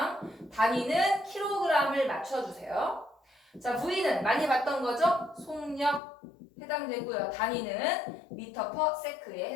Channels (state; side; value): drops out; right; at 6.0 s